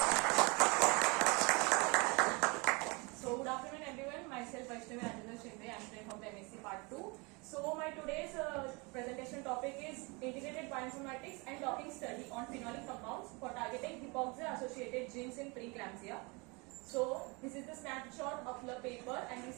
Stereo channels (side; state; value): left; quieter; 28.5 dB